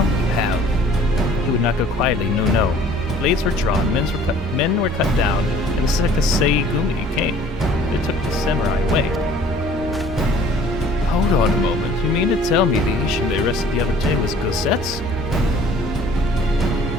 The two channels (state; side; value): normal; both; correlation 0.53